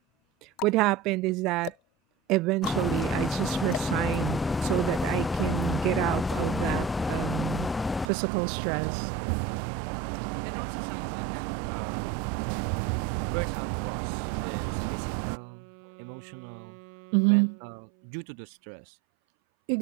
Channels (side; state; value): left; drops out; at 8.1 s